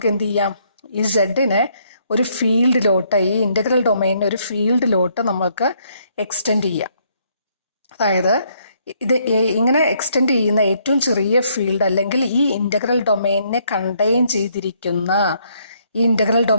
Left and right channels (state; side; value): inverted; both; correlation -0.70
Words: എന്ത് ചെയ്യാം? ഈ സെഡിനെ ഒരു ഫീൽഡിലോട്ട്, ഈ ഇൻ്റഗ്രൽ ഡൊമെയിനെ ഒരു ഫീൽഡിലോട്ട് നമുക്ക് എക്സ്റ്റെൻഡ് ചെയ്യാം. അതായത് ഇത് ഇങ്ങനെ എക്സ്റ്റെൻഡ് ചെയ്യുന്ന ഏറ്റവും ചെറിയ ഫീൽഡ് അല്ലെങ്കിൽ ഈ ഇൻ്റഗ്രൽ ഡൊമെയിനെ കണ്ടെയ്ൻ ചെയ്തിരിക്കുന്ന